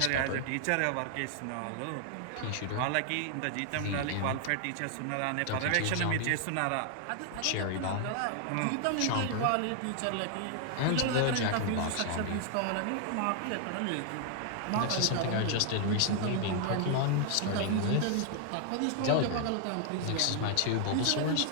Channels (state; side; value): different; both; correlation 0.00